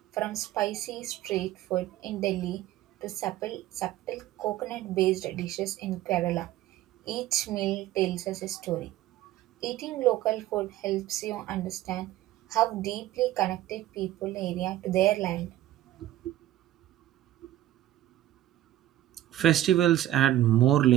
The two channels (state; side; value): quieter; left; 13.8 dB